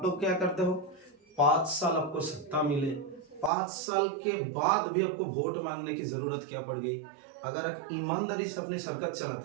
लोग क्या करते हो? 5 साल आपको सत्ता मिले, 5 साल के बाद भी आपको वोट मांगने की जरूरत क्या पड़ गई? अगर आप ईमानदारी से अपनी सरकार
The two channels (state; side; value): drops out; left; at 3.5 s